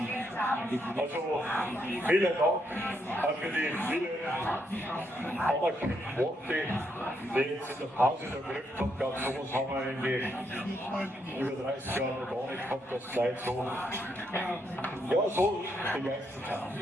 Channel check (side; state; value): both; normal; correlation 0.77